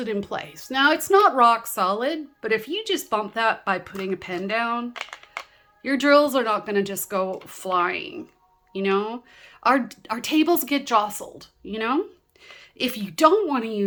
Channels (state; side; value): identical; both; correlation 1.00